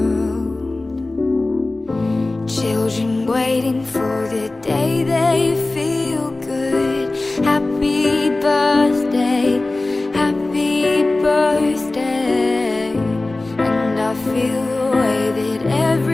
Children waiting for the day they feel good. Happy birthday, happy birthday. And I feel the way that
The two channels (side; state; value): right; quieter; 3.0 dB